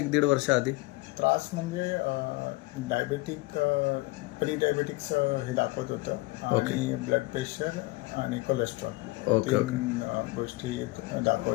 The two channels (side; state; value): right; quieter; 22.2 dB